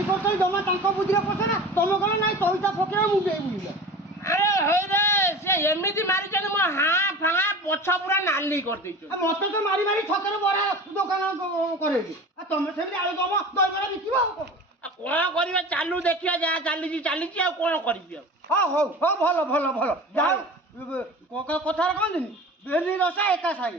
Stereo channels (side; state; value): both; normal; correlation 0.36